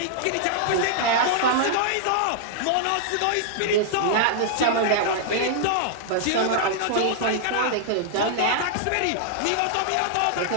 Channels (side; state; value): both; different; correlation -0.01